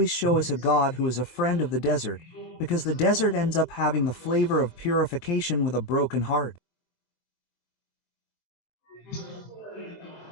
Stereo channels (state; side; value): late; right; 23 ms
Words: show us a God who is a friend of the desert, because the desert ends up having the flavor of purification with a broken heart.